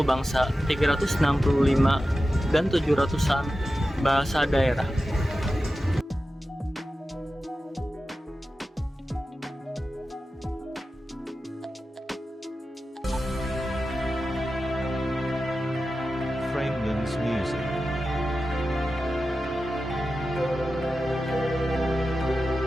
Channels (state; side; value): normal; both; correlation 0.93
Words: bangsa 365 dan 700-an bahasa daerah. Framelands Music.